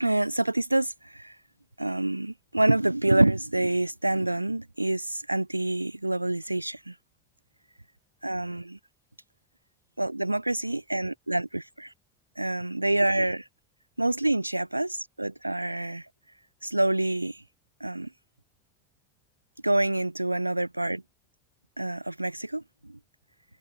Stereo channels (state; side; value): inverted; both; correlation -1.00